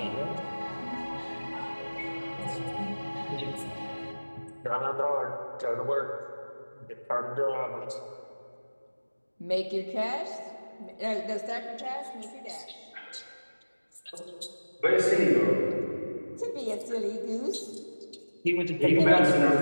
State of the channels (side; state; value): both; inverted; correlation -1.00